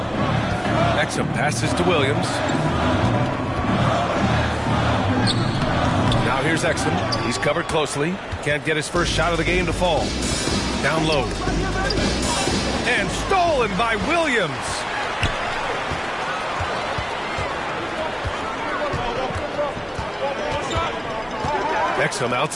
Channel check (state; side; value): identical; both; correlation 1.00